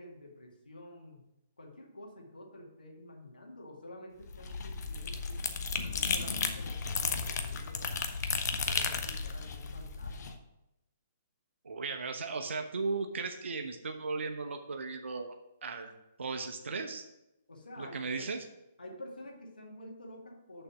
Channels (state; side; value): inverted; both; correlation -0.52